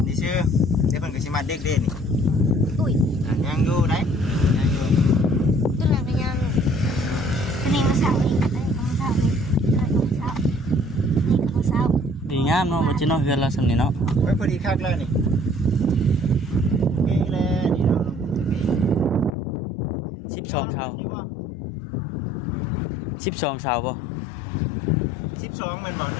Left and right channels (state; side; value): drops out; right; at 19.3 s